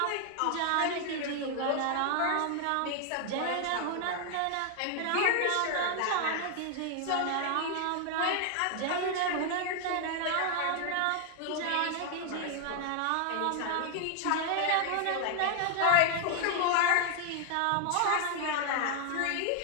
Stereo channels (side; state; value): both; different; correlation 0.00